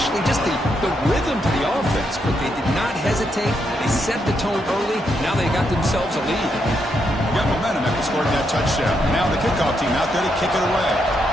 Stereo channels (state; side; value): normal; both; correlation 0.79